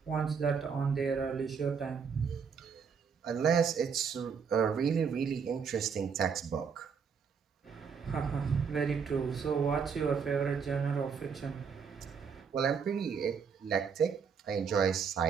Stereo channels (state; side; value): quieter; left; 6.3 dB